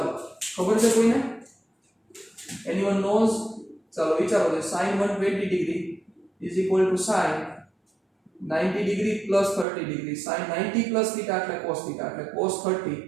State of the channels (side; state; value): left; drops out; at 9.7 s